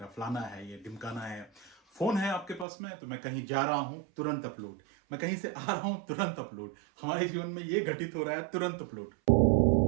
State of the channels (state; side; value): drops out; left; at 2.7 s